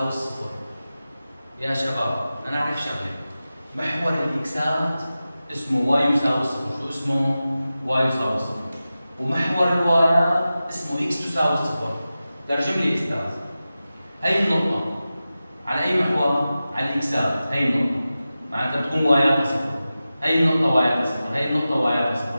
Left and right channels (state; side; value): inverted; both; correlation -0.95